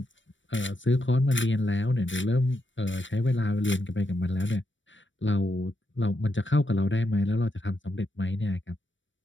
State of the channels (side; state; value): right; late; 0.55 ms